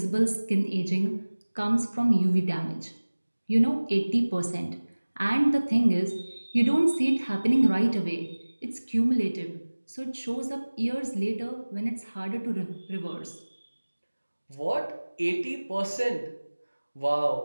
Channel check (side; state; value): both; inverted; correlation -1.00